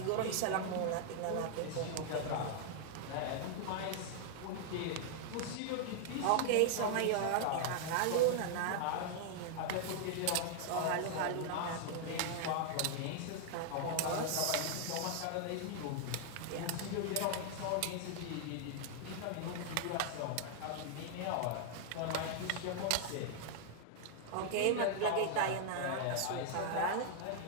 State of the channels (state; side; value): different; both; correlation -0.01